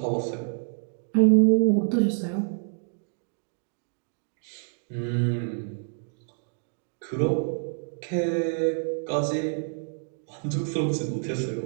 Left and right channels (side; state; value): left; silent; 59 dB below the other